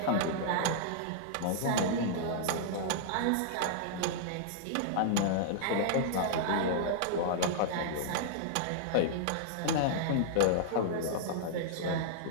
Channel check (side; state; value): both; different; correlation -0.01